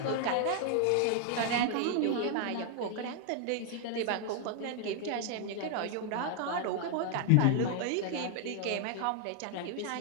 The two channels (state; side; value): different; both; correlation 0.00